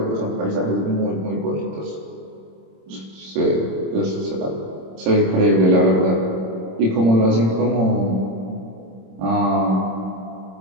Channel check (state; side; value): late; left; 26 ms